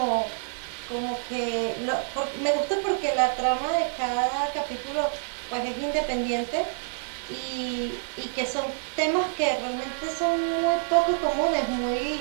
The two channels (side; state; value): left; silent; digital silence